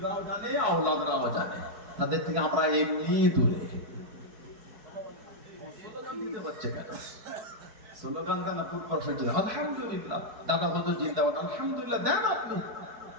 জানে, আওলাদরাও জানে, তাদের থেকে আমরা এমনি দূরে। স্লোগান দিতে হচ্ছে কেন? স্লোগান দেন আলহামদুলিল্লাহ, দাদা হুজুর জিন্দাবাদ, আলহামদুলিল্লাহ দেন আপনি,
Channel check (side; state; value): left; late; 4.7 ms